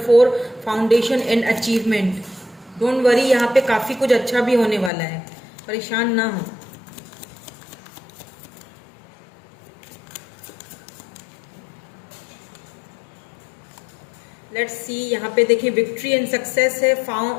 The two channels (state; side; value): drops out; right; at 4.9 s